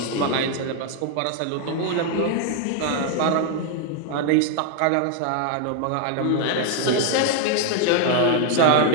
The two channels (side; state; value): both; different; correlation 0.00